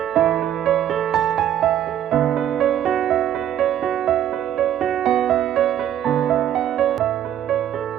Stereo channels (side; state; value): left; quieter; 11.0 dB